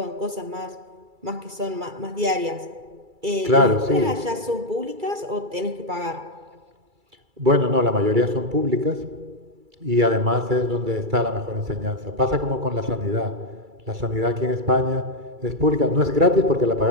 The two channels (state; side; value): late; left; 2.3 ms